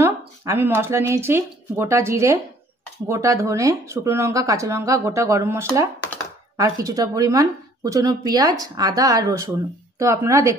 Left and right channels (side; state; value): both; normal; correlation 0.58